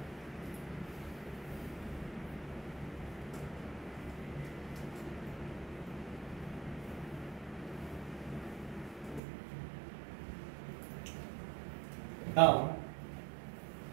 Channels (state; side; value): drops out; left; at 9.2 s